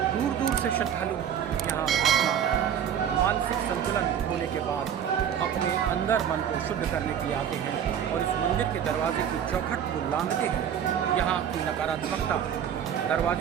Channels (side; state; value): left; quieter; 9.0 dB